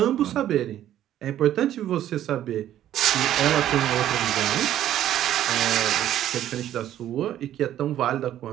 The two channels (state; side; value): quieter; left; 11.9 dB